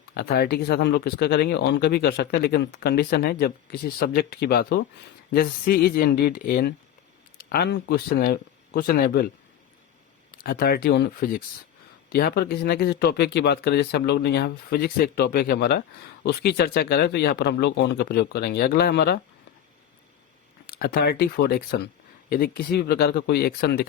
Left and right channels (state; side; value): quieter; right; 10.4 dB